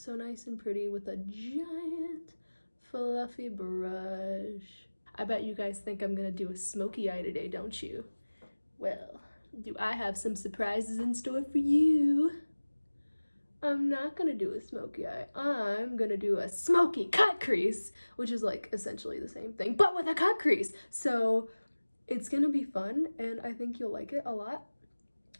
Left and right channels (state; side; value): inverted; both; correlation -1.00